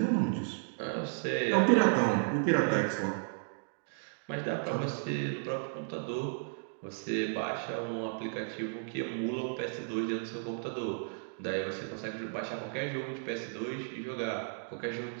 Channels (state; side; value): silent; left; digital silence